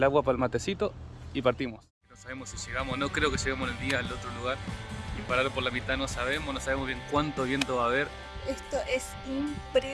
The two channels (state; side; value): identical; both; correlation 1.00